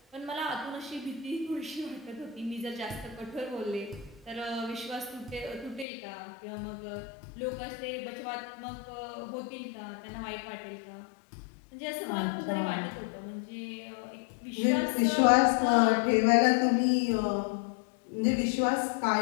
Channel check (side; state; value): right; drops out; at 5.9 s